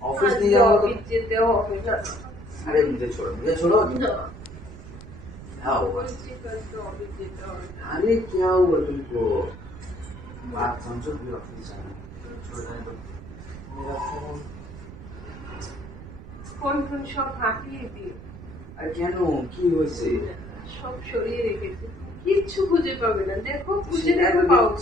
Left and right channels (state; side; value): noise; right; rumble, 14 dB below the sound